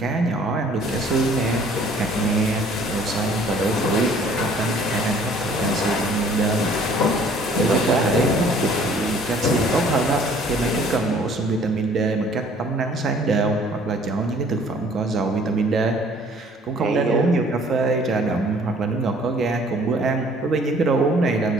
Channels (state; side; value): normal; both; correlation 0.56